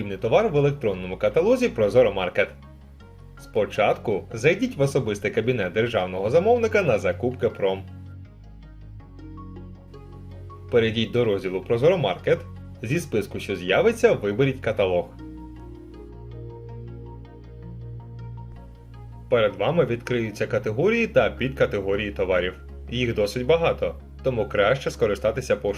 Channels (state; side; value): identical; both; correlation 1.00